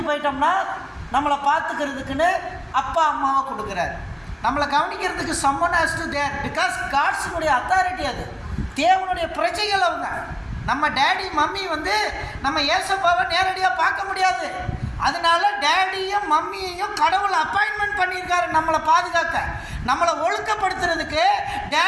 போயிட்டோம்னா நம்மளை பார்த்துக்கிறதுக்குன்னு அப்பா அம்மாவை கொடுக்குறார். நம்மளை கவனிக்கிறதுக்கு someone has to there because காட்ஸுடைய அத்தாரிட்டி. அது தேவனுடைய பிரஜைகள் அவங்க. நம்ம டேடி மம்மி நம்ம ஏசப்பாவை நேரடியாக பார்க்க முடியாது. அதனால டேடியும் மம்மியையும் கடவுள் அப்பாயின்மெண்ட் பண்ணியிருக்காரு நம்மளை பாதுகாக்க, நம்மளை ஒழுக்கப்படுத்துறதுக்கு.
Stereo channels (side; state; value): both; identical; correlation 1.00